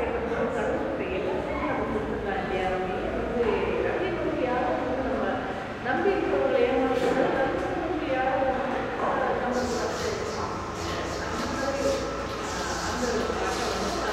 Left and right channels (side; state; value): both; identical; correlation 1.00